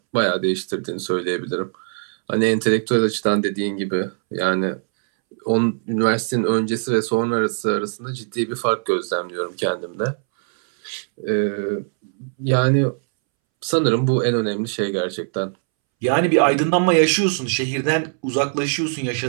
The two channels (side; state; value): left; silent; 65 dB below the other